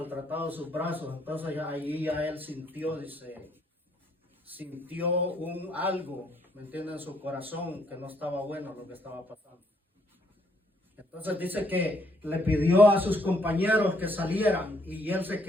sus brazos. Entonces ahí ya él sintió, dice, algo, ¿me entienden? En su corazón, que no estaba bueno lo que estaba pasando. Entonces dice que le pidió a sus compañeros que salieran, y él se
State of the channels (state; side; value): normal; both; correlation 0.69